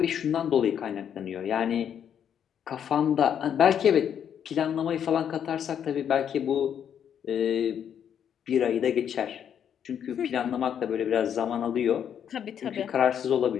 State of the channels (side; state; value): right; quieter; 8.8 dB